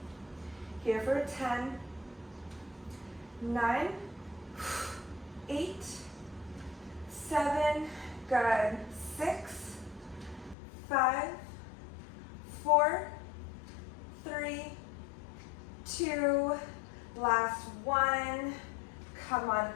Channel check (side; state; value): right; drops out; at 10.6 s